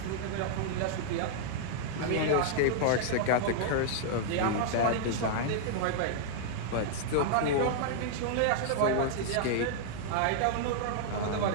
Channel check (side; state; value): both; different; correlation -0.01